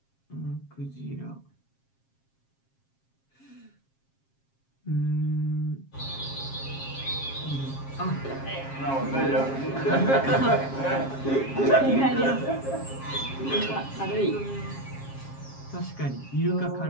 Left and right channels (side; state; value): right; late; 7.4 ms